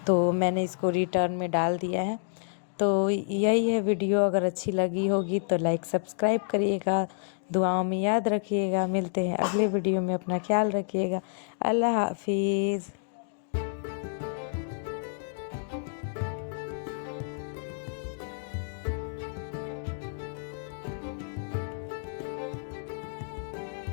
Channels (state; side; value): silent; right; digital silence